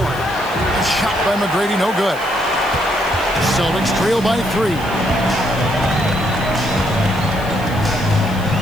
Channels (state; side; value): noise; left; hiss, 19 dB below the sound